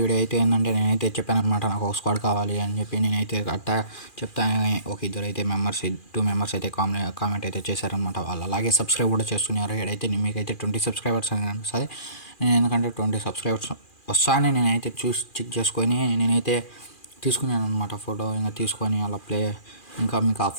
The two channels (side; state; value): right; late; 2.4 ms